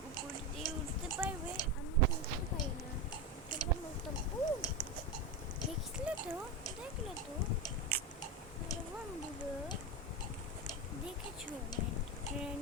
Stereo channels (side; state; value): both; normal; correlation 0.16